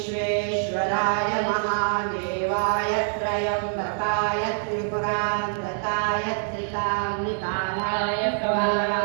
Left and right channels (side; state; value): left; silent; digital silence